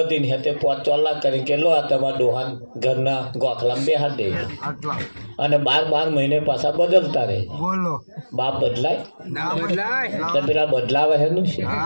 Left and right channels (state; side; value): inverted; both; correlation -1.00